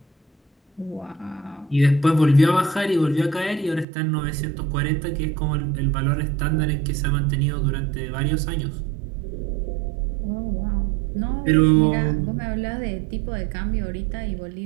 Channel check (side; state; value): left; drops out; at 3.9 s